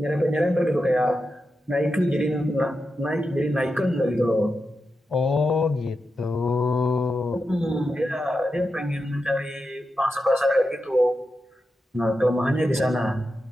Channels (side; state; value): both; normal; correlation 0.89